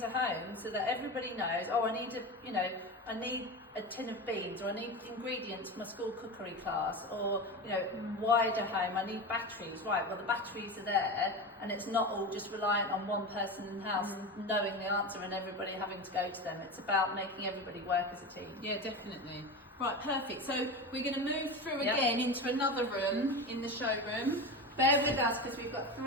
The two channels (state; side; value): normal; both; correlation 0.25